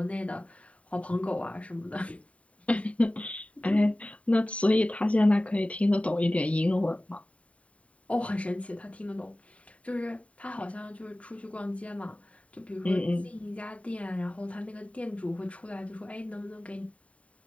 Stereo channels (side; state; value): right; late; 0.066 ms